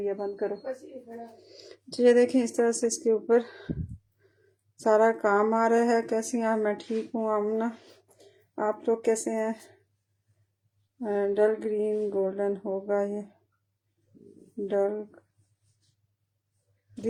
है, बंद करो। तो ये देखें, इस तरह से इसके ऊपर सारा काम आ रहा है। कैसी हैं आप? मैं ठीक हूँ आमना, आप लोग कैसे हैं? डल ग्रीन गोल्डन होगा ये, डल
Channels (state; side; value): identical; both; correlation 1.00